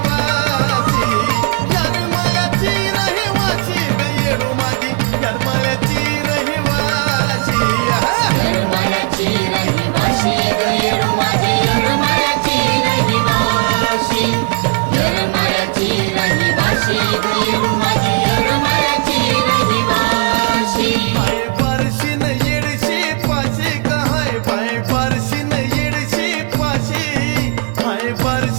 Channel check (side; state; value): left; quieter; 35.5 dB